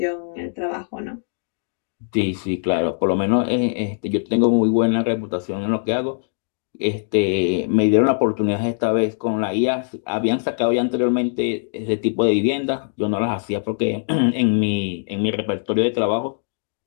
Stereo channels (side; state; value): right; silent; digital silence